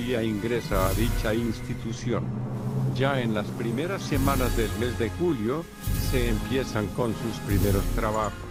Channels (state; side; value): identical; both; correlation 1.00